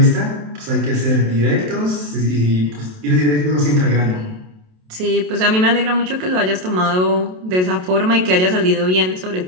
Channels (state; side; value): late; left; 27 ms